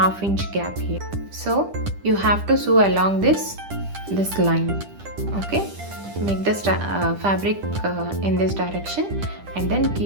gap here. So you have to sew along this line. Okay, make the fabric in this direction and then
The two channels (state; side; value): late; left; 10 ms